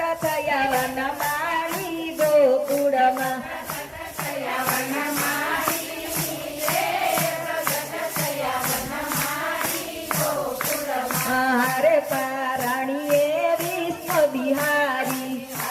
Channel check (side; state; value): both; identical; correlation 1.00